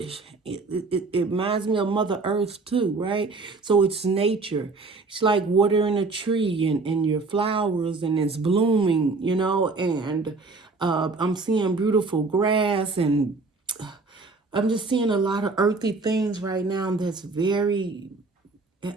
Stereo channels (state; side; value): quieter; left; 3.8 dB